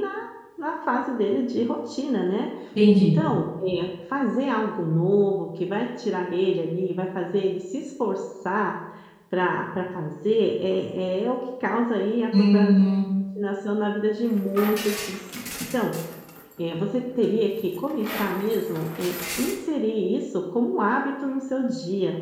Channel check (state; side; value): identical; both; correlation 1.00